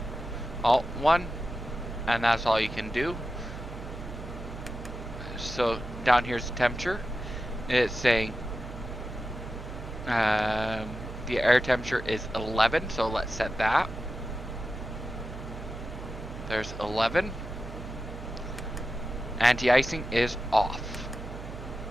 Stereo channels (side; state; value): right; noise; hum, 10 dB below the sound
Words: Alt 1, and that's all you can do. So down here's the temperature. It's saying the air temperature is 11, so let's set that. There's 11. Anti-icing is off.